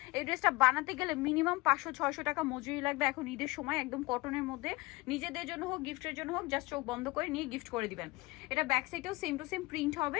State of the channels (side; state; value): right; quieter; 22.5 dB